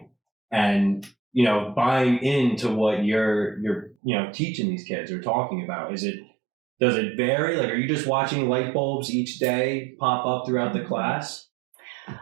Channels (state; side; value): drops out; left; at 4.0 s